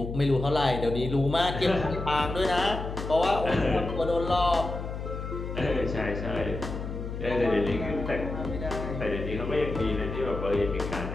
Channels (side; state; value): left; noise; hum, 6 dB below the sound